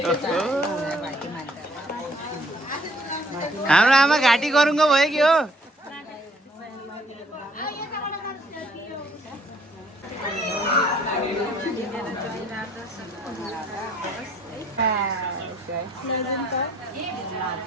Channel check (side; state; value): both; normal; correlation 0.61